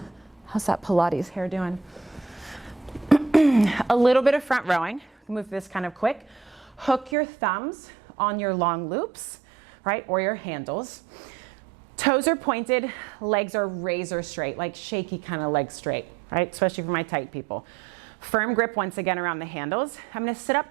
How's that Pilates hair doing? A little bit of front rowing. Move this kind of quick. Hook your thumbs on your long loops, right, or your handles. Toes are pointed, legs are razor straight, like shaky kind of leg straight, right, especially for my tight people. Firm grip once again around the handles. I'm gonna sit up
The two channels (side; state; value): left; drops out; at 7.2 s